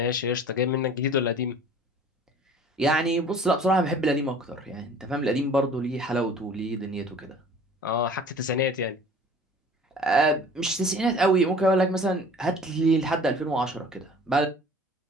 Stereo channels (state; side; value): normal; both; correlation 0.47